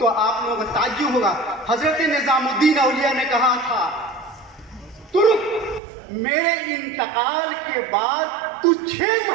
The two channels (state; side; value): drops out; left; at 5.8 s